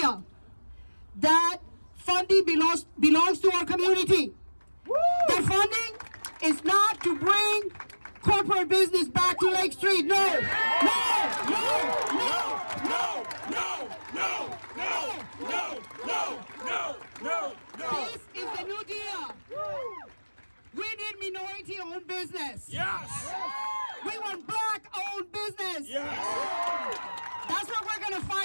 That funding belongs to our community. That funding is not to bring corporate business back to Lake Street. No, no, no, no, no, no, no, no, no, no, no, no, no. This is the New Deal. We need minority-owned business. Yes. We want black-owned business. Yes. That's what we're going to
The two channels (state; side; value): inverted; both; correlation -1.00